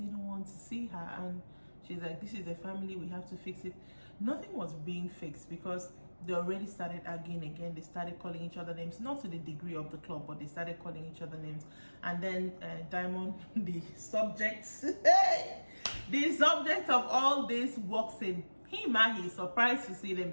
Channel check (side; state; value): both; inverted; correlation -1.00